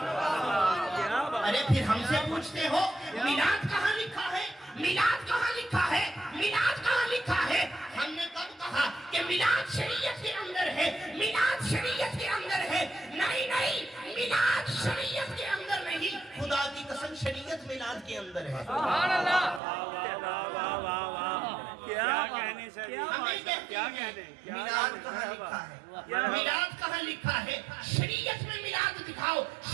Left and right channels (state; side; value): drops out; left; at 19.6 s